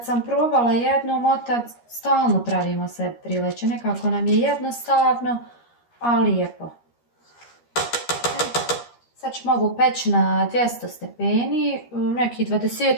sam probala jednom, otac, stalno pravimo se trileće, nekako nam je jednostavno, a lijepo. Sad ćemo ovu peći na 200 stepeni, nekih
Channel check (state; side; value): late; right; 13 ms